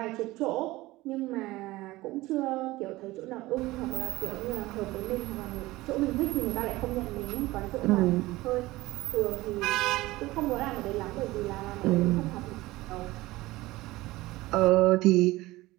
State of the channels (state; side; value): quieter; left; 19.0 dB